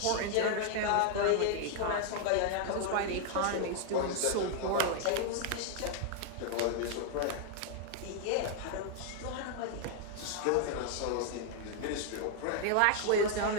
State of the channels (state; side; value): different; both; correlation 0.00